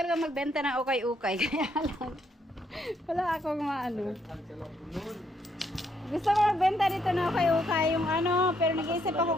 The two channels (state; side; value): normal; both; correlation 0.73